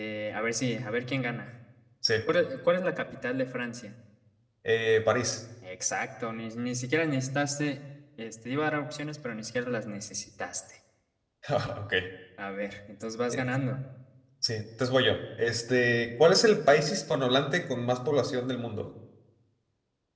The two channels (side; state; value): both; identical; correlation 1.00